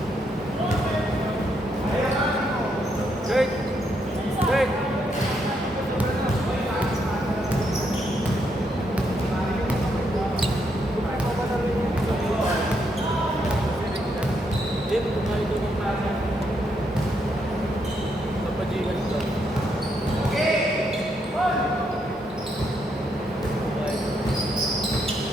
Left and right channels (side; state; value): both; normal; correlation 0.77